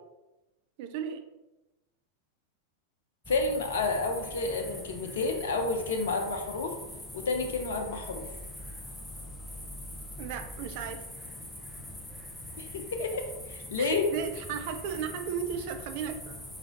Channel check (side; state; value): both; normal; correlation -0.19